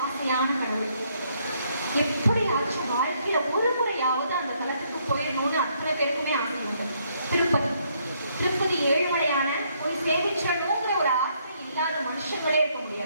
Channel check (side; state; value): both; inverted; correlation -0.71